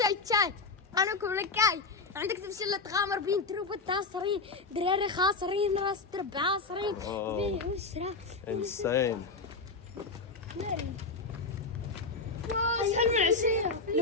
تشاي انا كل كاي عندك تمشي تغامر بين تروب التاصرين دراري خاسرين راس درب عاصرين بيه وشرا Insane. ناري اسهل من عشية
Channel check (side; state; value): right; quieter; 4.0 dB